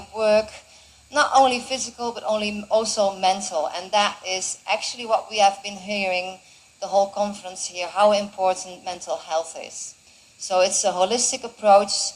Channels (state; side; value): identical; both; correlation 1.00